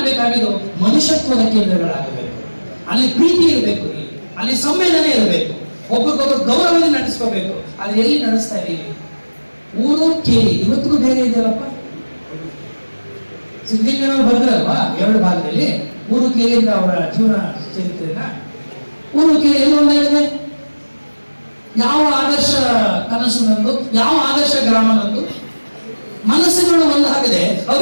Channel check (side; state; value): both; inverted; correlation -1.00